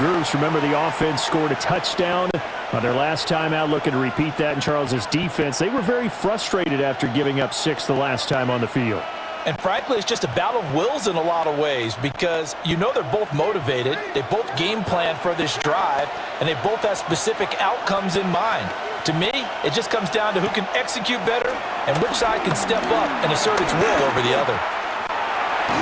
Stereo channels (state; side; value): identical; both; correlation 1.00